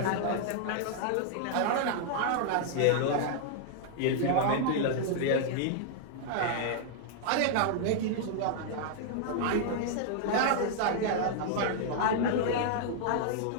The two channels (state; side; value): different; both; correlation 0.00